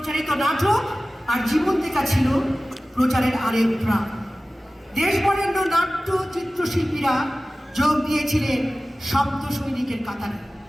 নাটক আর জীবন্তিকা ছিল প্রচারের আরেক প্রাণ। দেশবরেণ্য নাট্য চিত্রশিল্পীরা যোগ দিয়েছিলেন শব্দ সৈনিকের কাতারে।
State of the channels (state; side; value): normal; both; correlation 0.97